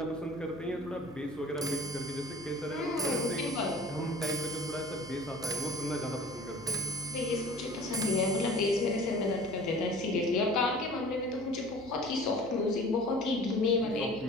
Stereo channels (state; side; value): noise; left; hum, 22 dB below the sound